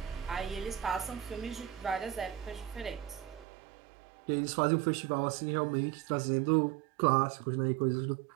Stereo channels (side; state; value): left; drops out; at 3.5 s